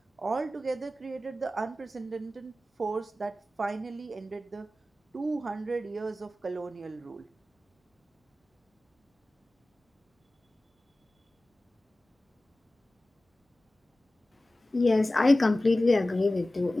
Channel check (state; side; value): normal; both; correlation 0.96